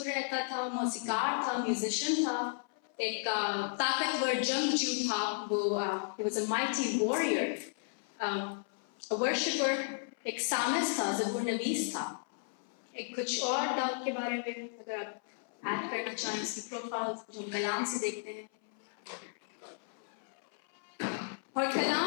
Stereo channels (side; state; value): right; silent; 55 dB below the other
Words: رہتا تھا، موسیقار تھا، میوزیشین تھا، ایک طاقتور جنگجو تھا. وہ he was a mighty warrior, a worshipper, ایک سامس تھا، زبور نویس تھا. ایک کچھ اور داؤد کے بارے میں اگر آپ ایڈ کرنا چاہیں اس کی پروفائل جو ہم کلام سے دیکھتے ہیں. اور